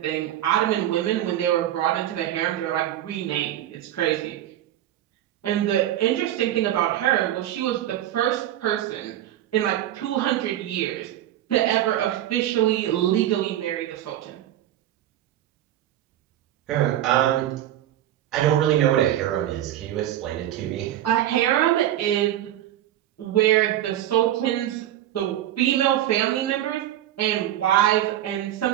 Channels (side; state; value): left; quieter; 12.6 dB